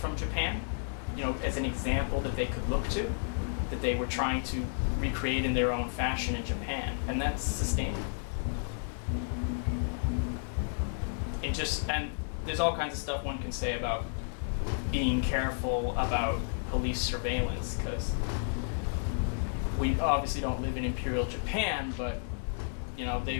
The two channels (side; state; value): right; silent; digital silence